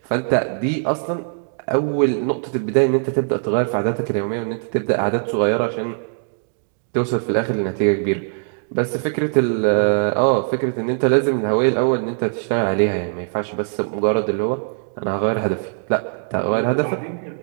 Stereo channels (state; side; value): silent; left; digital silence